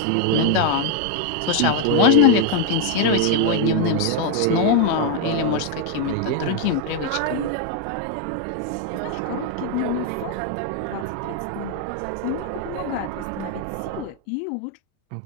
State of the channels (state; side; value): different; both; correlation 0.01